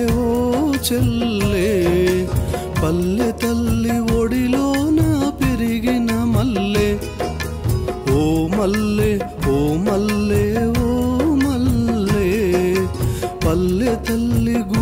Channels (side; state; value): both; identical; correlation 1.00